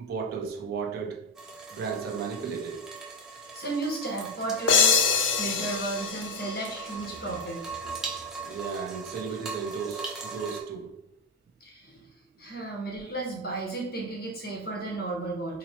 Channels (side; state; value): both; normal; correlation 0.11